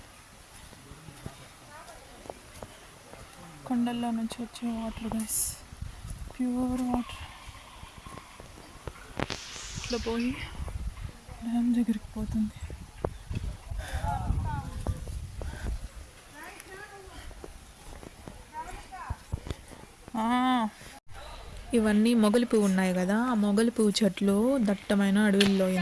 కొండల్లో నుంచి వచ్చే వాటర్ గైస్, ప్యూర్ వాటర్. ఇట్లా పోయి డ్యామ్ దగ్గరికి పోతుంది. ఇవన్నీ మొగలి పువ్వు ఉన్నాయి కదా, ఆ మొగలి పువ్వు చెట్లు దట్టమైన అడవుల్లో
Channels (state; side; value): identical; both; correlation 1.00